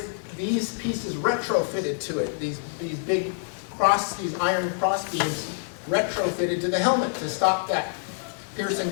these pieces retrofitted to it, these big these iron cross beams retrofitted to the helmet to stop that piercing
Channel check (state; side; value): silent; right; digital silence